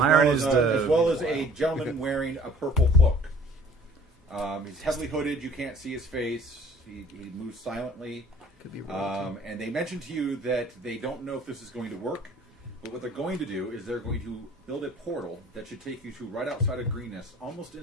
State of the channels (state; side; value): normal; both; correlation 0.52